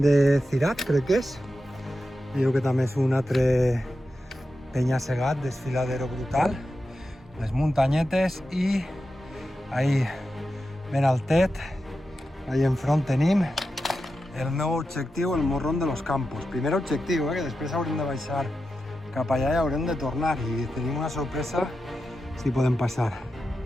de Cirat, crec que és. Veieu que també és un altre penya-segat, desfiladero brutal. Les muntanyetes i ahí ben altet, ahí enfront tenim el meu objectiu, el Morrón de los Campos. Primer objectiu, que després haurem de baixar cap allà i haurem de tornar i tenim una sorpresa si podem passar.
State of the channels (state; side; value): normal; both; correlation 0.90